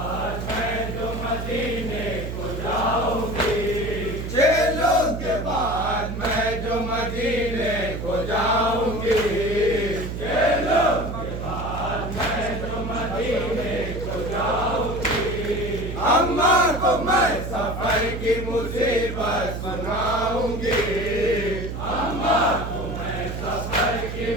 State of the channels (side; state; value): right; noise; hum, 6 dB below the sound